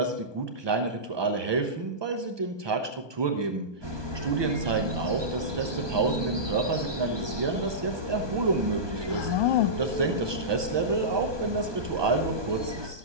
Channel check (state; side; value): late; left; 1.2 ms